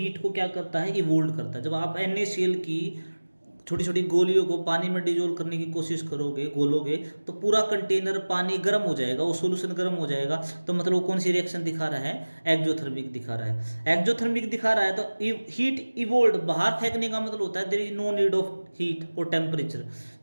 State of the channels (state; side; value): inverted; both; correlation -1.00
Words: को क्या करता है इवोल्ड करता है। जब आप NaCl की छोटी छोटी गोलियों को पानी में डिजोल्व करने की कोशिश करोगे, घोलोगे, तो पूरा कंटेनर पानी गर्म हो जाएगा, वो सॉल्यूशन गर्म हो जाएगा। तो मतलब वो कौन सी रिएक्शन दिखा रहा है एक्जोथर्मिक दिखा रहा है। एक्जोथर्मिक दिखा रहा है तो हीट इवोल्ड, बाहर फेंकने का मतलब होता है there is no need of heat और टेम्परेचर।